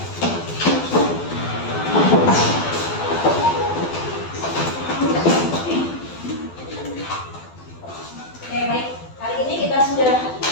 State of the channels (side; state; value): right; late; 12 ms